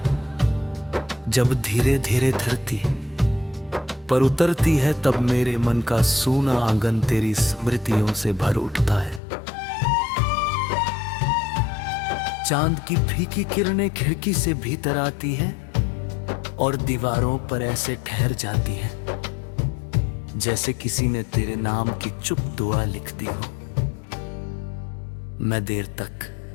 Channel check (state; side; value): drops out; right; at 9.2 s